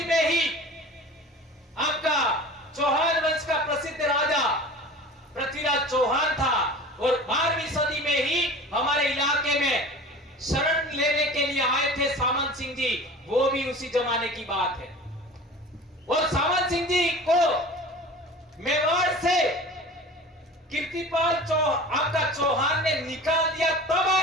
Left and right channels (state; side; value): normal; both; correlation 0.39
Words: में ही आपका चौहान वंश का प्रसिद्ध राजा पृथ्वीराज चौहान था। और 12वीं सदी में ही हमारे इलाके में शरण लेने के लिए आए थे सामंत सिंह जी, वो भी उसी जमाने की बात है। और सामंत सिंह जी को मेवाड़ से कीर्तिपाल आपका चौहान ने निकाल दिया, तब